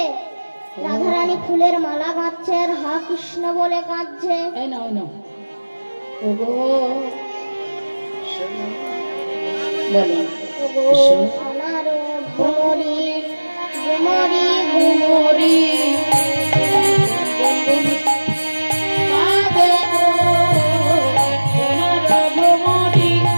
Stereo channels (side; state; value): both; inverted; correlation -1.00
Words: রাধারানী ফুলের মালা গাঁথছে আর হা কৃষ্ণ বলে কাঁদছে। এই না, ওই না, সোনার ভ্রমরি ভ্রমরি ভ্রমরি